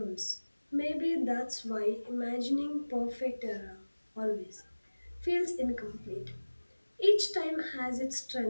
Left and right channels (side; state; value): both; inverted; correlation -1.00